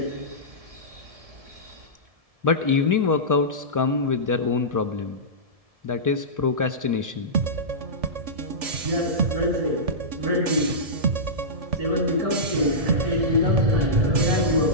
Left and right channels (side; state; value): left; late; 1.7 ms